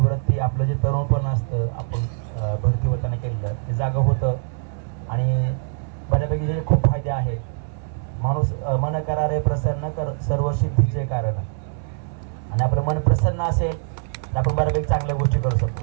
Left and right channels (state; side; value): silent; left; digital silence